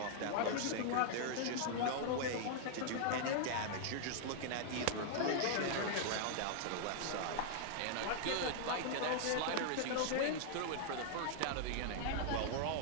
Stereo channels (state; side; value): different; both; correlation 0.00